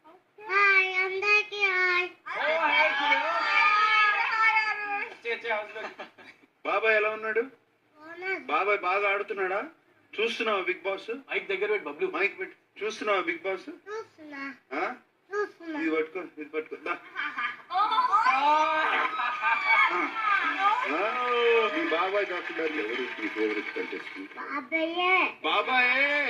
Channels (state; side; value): identical; both; correlation 1.00